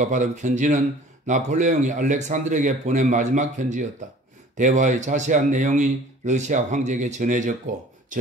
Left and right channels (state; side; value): normal; both; correlation 0.49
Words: 받은 편지는 나폴레옹이 알렉산드르에게 보낸 마지막 편지였다. 대화의 자세한 내용이 러시아 황제에게 전해졌고